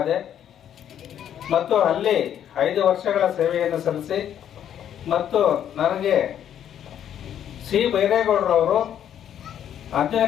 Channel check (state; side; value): quieter; right; 9.9 dB